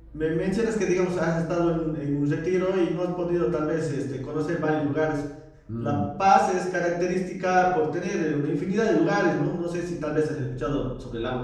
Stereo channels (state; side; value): identical; both; correlation 1.00